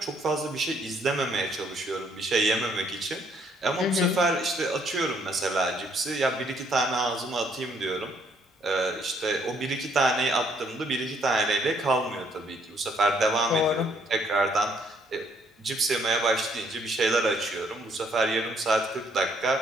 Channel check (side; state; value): both; normal; correlation 0.67